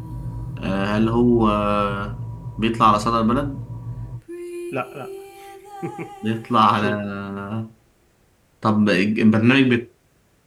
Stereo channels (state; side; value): identical; both; correlation 1.00